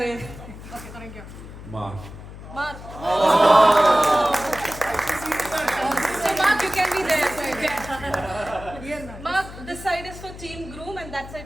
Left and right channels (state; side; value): noise; left; hum, 14 dB below the sound